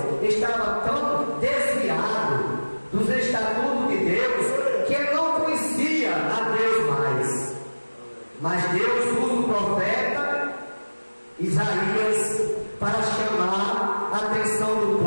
estava tão desviado dos estatutos de Deus que ele não conhecia a Deus mais. do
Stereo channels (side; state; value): both; inverted; correlation -1.00